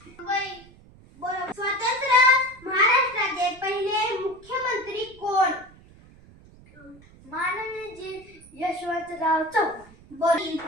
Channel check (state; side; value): noise; right; rumble, 24 dB below the sound